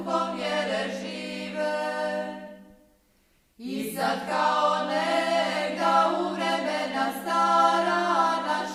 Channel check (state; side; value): identical; both; correlation 1.00